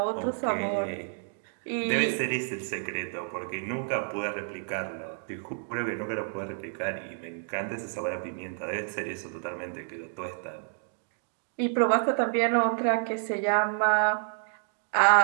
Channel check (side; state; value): left; silent; digital silence